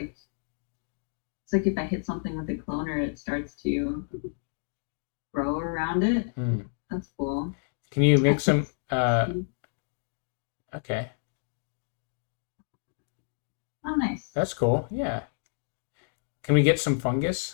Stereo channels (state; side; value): silent; right; digital silence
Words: it's like if I hit something with a cloner, it starts to grow around it. That's cool. Can you make some? Okay. Oh, nice. That's cool. Yeah. Can we get some